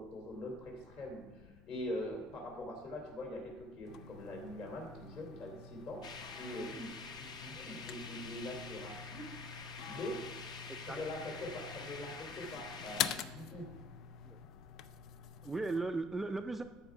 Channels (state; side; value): noise; left; rumble, 18 dB below the sound